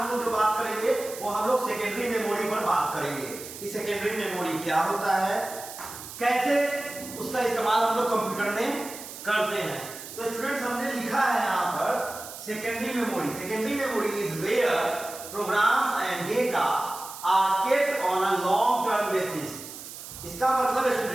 लोग जो बात करेंगे वो हम लोग सेकेंडरी मेमोरी पर बात करेंगे कि सेकेंडरी मेमोरी क्या होता है, कैसे उसका इस्तेमाल हम लोग कंप्यूटर में करते हैं। तो स्टूडेंट्स हमने लिखा है यहाँ पर secondary memory. Secondary memory is where programs and data are kept on a long term basis. इसका मतलब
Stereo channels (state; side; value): noise; right; hiss, 12 dB below the sound